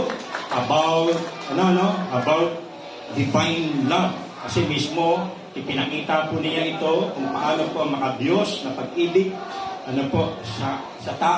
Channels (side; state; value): both; identical; correlation 1.00